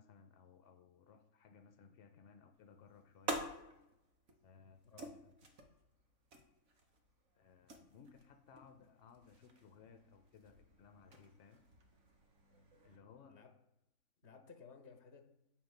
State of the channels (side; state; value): left; late; 4.0 ms